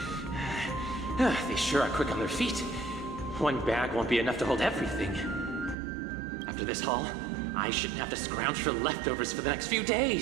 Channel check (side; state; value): left; drops out; at 5.8 s